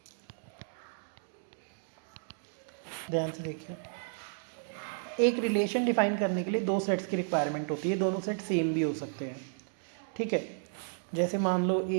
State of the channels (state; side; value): silent; left; digital silence